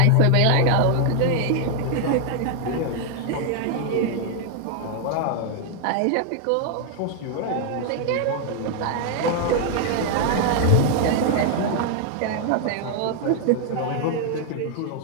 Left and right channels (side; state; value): both; different; correlation 0.00